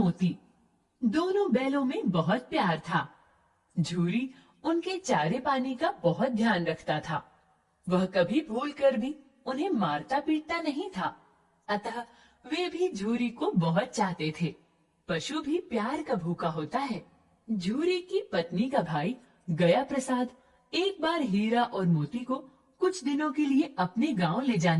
दोनों बैलों में बहुत प्यार था। झूरी उनके चारे पानी का बहुत ध्यान रखता था। वह कभी भूल कर भी उन्हें मारता पीटता नहीं था। अतः वे भी झूरी को बहुत चाहते थे। पशु भी प्यार का भूखा होता है। झूरी की पत्नी का भाई गया प्रसाद एक बार हीरा और मोती को कुछ दिनों के लिए अपने गांव ले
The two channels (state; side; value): identical; both; correlation 1.00